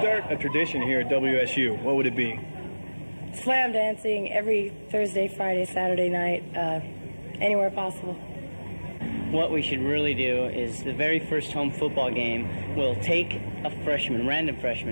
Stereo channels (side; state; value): both; inverted; correlation -1.00